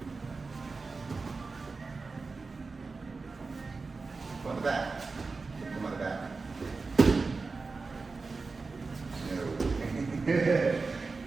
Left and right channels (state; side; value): quieter; left; 4.1 dB